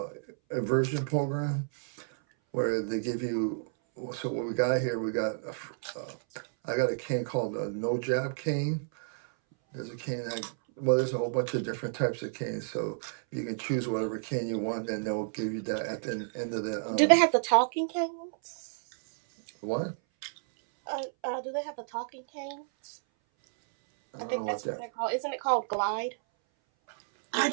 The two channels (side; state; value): left; silent; 57 dB below the other